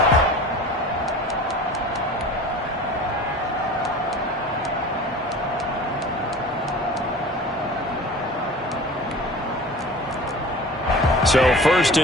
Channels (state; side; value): normal; both; correlation 0.39